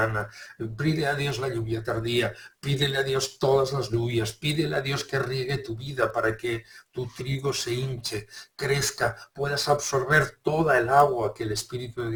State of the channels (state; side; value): identical; both; correlation 1.00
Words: pídele a Dios la lluvia tardía, pídele a Dios todas las lluvias, pídele a Dios que riegue tu vida para que tu trigo se hinche, crezca, puedas absorber toda el agua que el Espíritu de